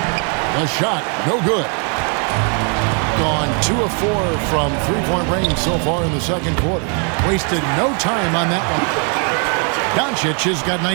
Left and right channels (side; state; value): left; quieter; 39.2 dB